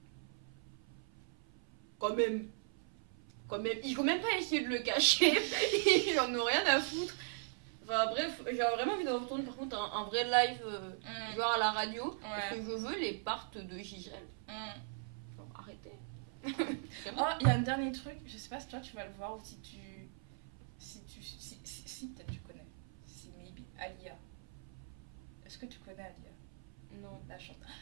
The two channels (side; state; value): left; silent; 52 dB below the other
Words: Quand même. Il faut même pas essayer de le cacher. Ils en ont rien à foutre. Enfin bref, j'ai vraiment envie de retourner par contre un vrai live, genre à la radio. Parce que je veux les parts de Gisèle. Genre arrêtez. Oh, il y a un dernier truc, je sais pas si toi tu vas le voir ou si peut-être tu connais. Si maybe. Alia. Est-ce que tu connais Alia? Non. La chanteuse.